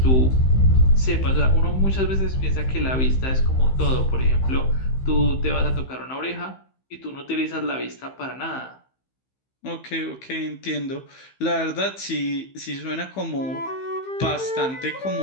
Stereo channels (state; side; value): late; right; 15 ms